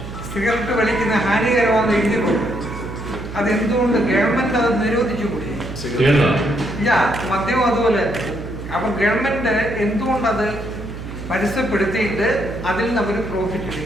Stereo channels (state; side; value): noise; right; hum, 10 dB below the sound